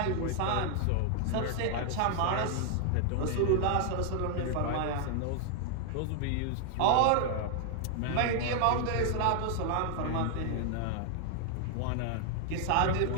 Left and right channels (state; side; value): different; both; correlation 0.00